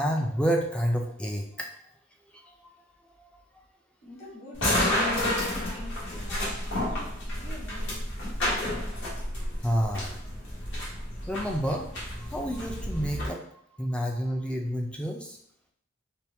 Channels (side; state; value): both; normal; correlation 0.61